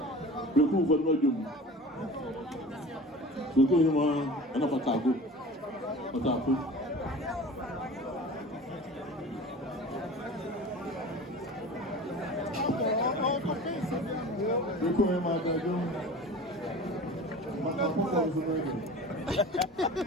pẹ̀kú fún ọdún ọjọ́ mu pẹ̀kú yìí mọ ẹ̀nà pàtàkó pàtàkó. pẹ̀kú yìí máa dájú máa kó kọ́ ọ̀sùn náà yìí.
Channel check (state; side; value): normal; both; correlation 0.38